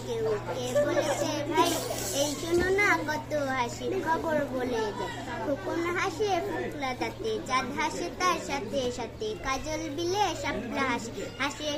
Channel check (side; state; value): both; identical; correlation 1.00